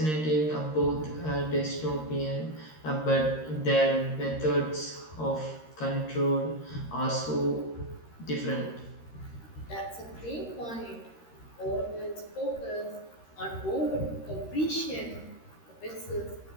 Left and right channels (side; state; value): right; late; 13 ms